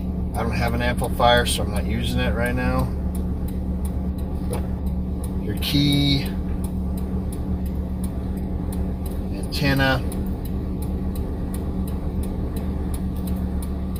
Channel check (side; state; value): both; identical; correlation 1.00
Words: I don't have an amplifier, so I'm not using it right now. Your key, antenna,